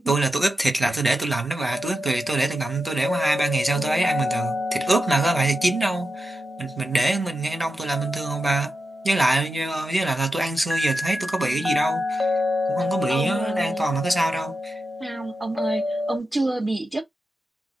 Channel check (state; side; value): normal; both; correlation 0.89